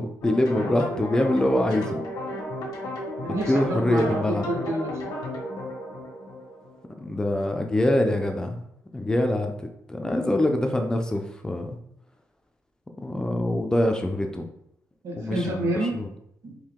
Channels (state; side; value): normal; both; correlation 0.88